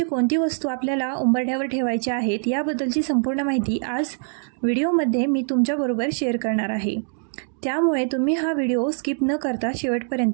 कोणती वस्तू आपल्याला उंबरठ्यावर ठेवायची आहेत याबद्दलची संपूर्ण माहिती आज व्हिडिओमध्ये मी तुमच्याबरोबर शेअर करणार आहे. त्यामुळे तुम्ही हा व्हिडिओ स्किप न करता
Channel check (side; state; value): left; silent; 57 dB below the other